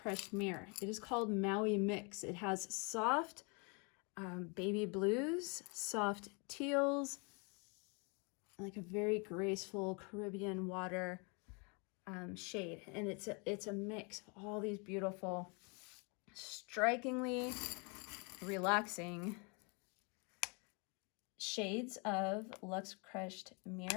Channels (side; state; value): right; quieter; 33.5 dB